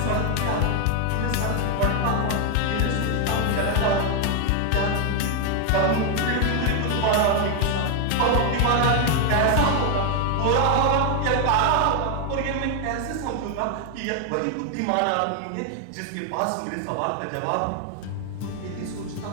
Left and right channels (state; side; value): different; both; correlation 0.00